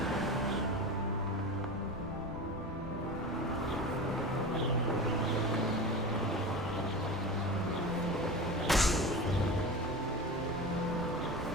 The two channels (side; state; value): both; normal; correlation 0.28